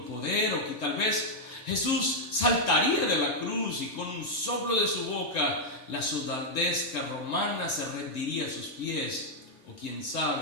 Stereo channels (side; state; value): right; late; 3.4 ms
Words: poder, o que tal vez Jesús saltaría de la cruz y con un soplo de su boca la soldadesca romana se rendiría a sus pies, o quién